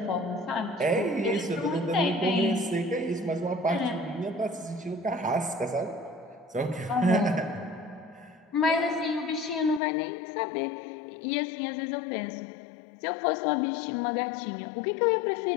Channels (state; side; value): drops out; right; at 9.8 s